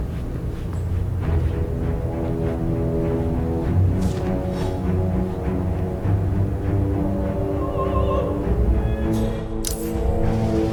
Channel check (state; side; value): identical; both; correlation 1.00